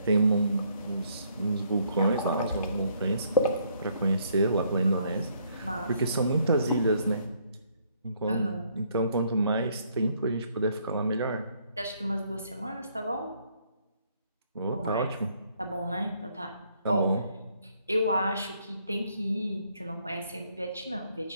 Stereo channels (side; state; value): both; inverted; correlation -0.68